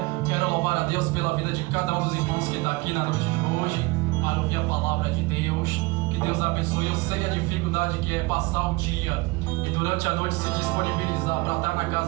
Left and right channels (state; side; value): quieter; left; 24.1 dB